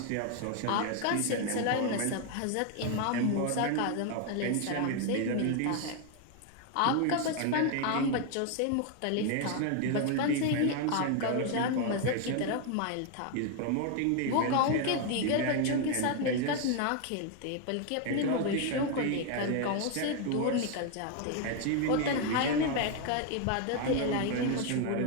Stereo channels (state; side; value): different; both; correlation 0.01